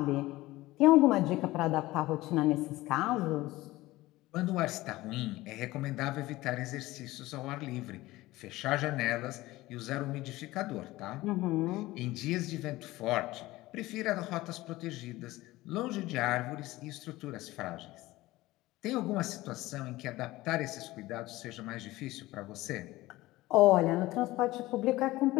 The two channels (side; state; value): right; quieter; 18.3 dB